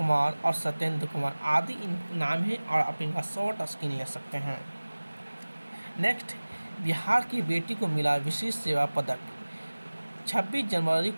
और सत्येंद्र कुमार आदि इन नाम हैं और आप इनका शॉर्ट स्क्रीन ले सकते हैं। नेक्स्ट, बिहार की बेटी को मिला विशेष सेवा पदक। 26 जनवरी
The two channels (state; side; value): inverted; both; correlation -1.00